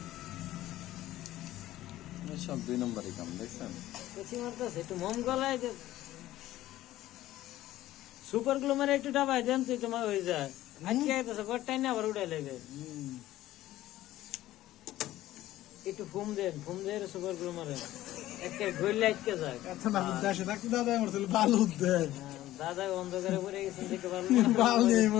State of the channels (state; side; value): quieter; right; 15.0 dB